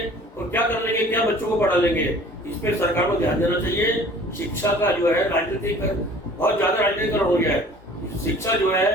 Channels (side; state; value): both; normal; correlation 0.48